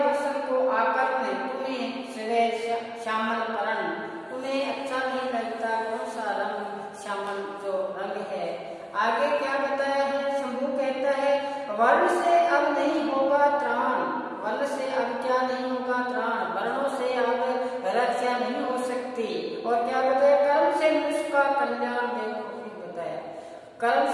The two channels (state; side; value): identical; both; correlation 1.00